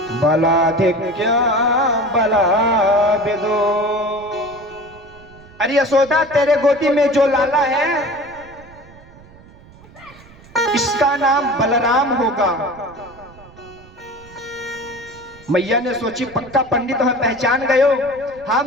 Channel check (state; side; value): noise; right; rumble, 23 dB below the sound